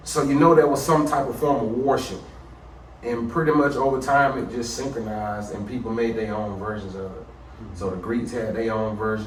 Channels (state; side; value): identical; both; correlation 1.00